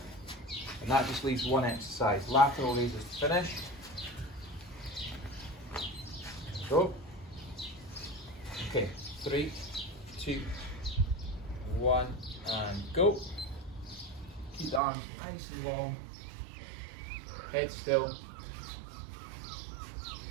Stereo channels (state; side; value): drops out; left; at 14.8 s